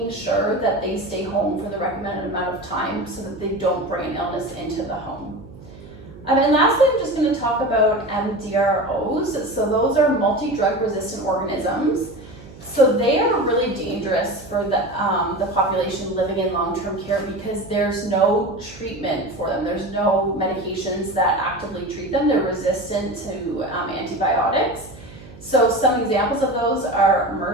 sure that they stay home for the recommended amount of time so that they don't bring illness into the home. And lastly, I'm just going to talk about MDROs. So those are multi-drug resistant organisms. So they are really dangerous for the population living in long-term care because there's no treatment for them. There's no medications that actively treat them. They're resistant to antibiotics. So some examples of those are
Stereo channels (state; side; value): noise; right; hum, 18 dB below the sound